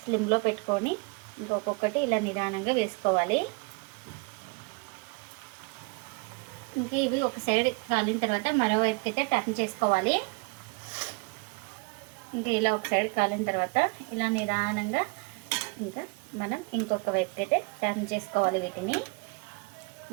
స్లిమ్లో పెట్టుకొని ఇంకొకటి ఇలా నిదానంగా వేసుకోవాలి. ఇంకా ఇవి ఒక సైడ్ కాలిన తర్వాత మరోవైపుకి అయితే టర్న్ చేసుకోవాలి. ఇంకా ఇలా ఒక సైడ్ కాలిన తర్వాత ఇలా నిదానంగా ఇంకా మనం ఇంకొక వైపుకి అయితే టర్న్ చేసుకోవాలి వీటిని.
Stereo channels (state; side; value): quieter; left; 30.3 dB